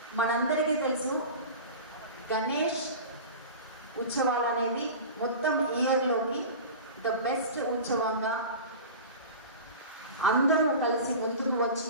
మనందరికీ తెలుసు, గణేష్ ఉత్సవాలు అనేది మొత్తం ఇయర్లోకి ద బెస్ట్ ఉత్సవంగా అందరూ కలిసి ముందుకు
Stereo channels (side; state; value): both; inverted; correlation -0.33